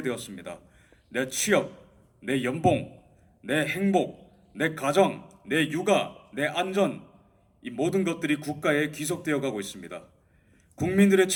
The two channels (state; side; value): identical; both; correlation 1.00